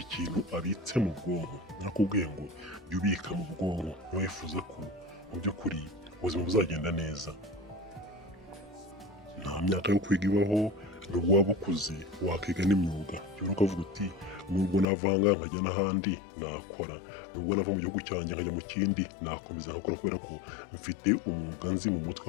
abitse mu bwonko. Nakubwiye ngo jya ubika mu bwonko niba wifuza ko mu by'ukuri ubuzima buzagenda neza. Nta myaka yo kwiga ibaho, nubwo waba ukuze wakiga n'imyuga. Jya ukavuga uti nubwo navanga nkajya n'ahandi nakora, nubwo nava mu gihugu cyanjye nkajya mu kindi nakomeza nkakora kubera ko mfite umwuga nzi mu mutwe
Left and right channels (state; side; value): drops out; right; at 14.9 s